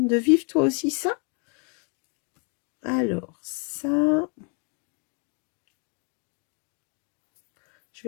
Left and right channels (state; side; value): quieter; right; 37.1 dB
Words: vivre toi aussi ça? Alors, ça... Je